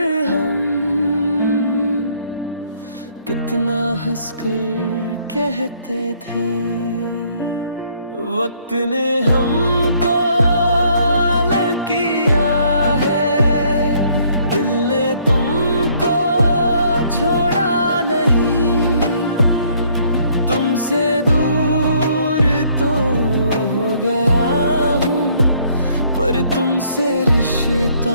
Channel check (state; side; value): inverted; both; correlation -0.64